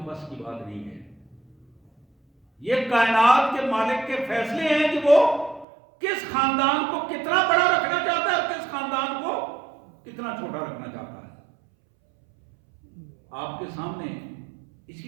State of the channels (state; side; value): drops out; left; at 5.7 s